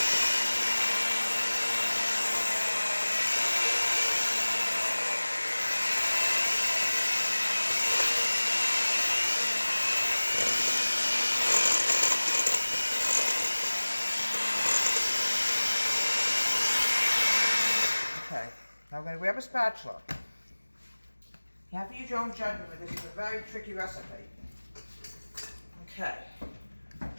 Okay, now we're going to grab a spatula. You have to use your own judgment, but this is a very tricky recipe. Okay.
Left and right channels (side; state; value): both; inverted; correlation -1.00